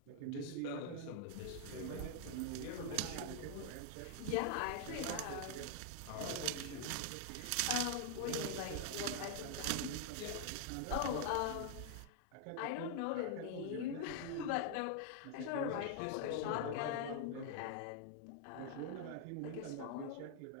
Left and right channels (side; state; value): both; different; correlation 0.00